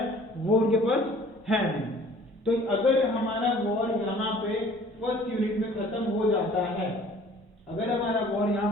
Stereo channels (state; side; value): normal; both; correlation 0.52